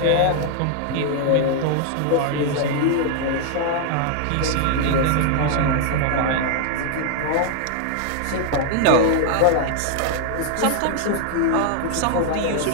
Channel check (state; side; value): different; both; correlation 0.00